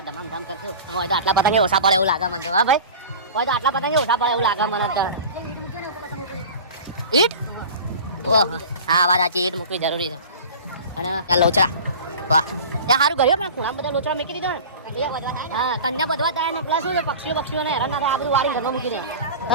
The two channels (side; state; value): both; inverted; correlation -0.36